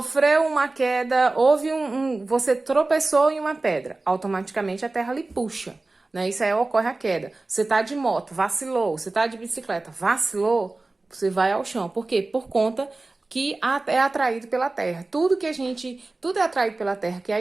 uma queda, houve você tropeçou em uma pedra, automaticamente a terra lhe puxa, né? Isso aí ocorre a queda. Você tá de moto, vacilou, você tá de bicicleta, vacilou, você vai ao chão. Por quê? Por conta que é atraído pela terra. Tudo é atraído pela terra, que é a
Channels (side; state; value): left; quieter; 3.2 dB